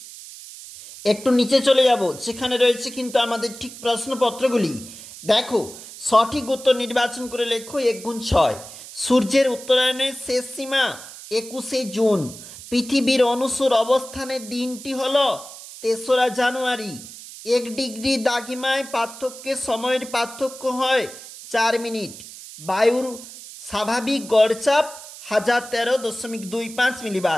একটু নিচে চলে যাব, যেখানে রয়েছে কিন্তু আমাদের ঠিক প্রশ্নপত্রগুলি। দেখো সঠিক উত্তর নির্বাচন করে লেখো 1×6। সূর্যের উত্তরায়ণের শেষ সীমা 21শে জুন। পৃথিবীর অনুসর অবস্থানের দিনটি হল 3রা জানুয়ারি। 1 ডিগ্রি দ্রাঘিমায় পার্থক্যের সময়ের পার্থক্য হয় 4 মিনিট। বায়ুর স্বাভাবিক গড়চাপ 1013.25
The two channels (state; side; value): noise; right; hiss, 15 dB below the sound